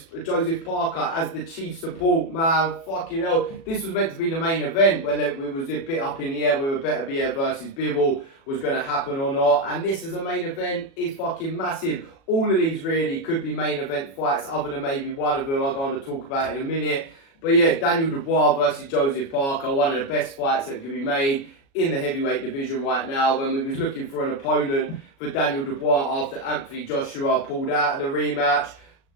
Parker as the chief support, man. Fucking hell. This was meant to be the main event when it was a bit up in the air whether Beterbiev versus Bivol was going to happen or not. And this as a main event is fucking massive. All of these really could be main event fights, other than maybe one of them I'm going to talk about in a minute. But yeah, Daniel Dubois versus Joseph Parker, one of the best fights that could be made in the heavyweight division right now. When we was looking for an opponent for Daniel Dubois after Anthony Joshua pulled out of the rematch,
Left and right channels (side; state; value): right; late; 36 ms